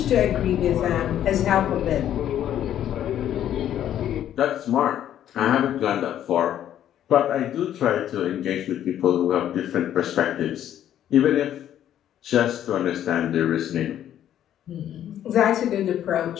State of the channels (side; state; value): right; quieter; 11.0 dB